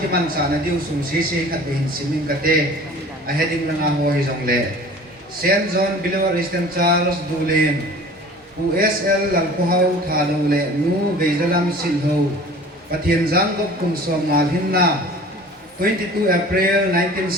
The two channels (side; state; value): both; normal; correlation 0.44